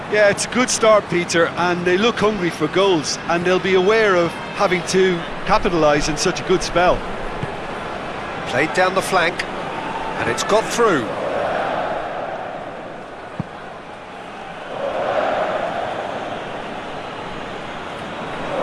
Yeah, it's a good start, Peter, and they look hungry for goals, and they'll be aware of having to capitalise in such a good spell. Played down the flank, and it's got through.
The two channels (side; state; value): both; identical; correlation 1.00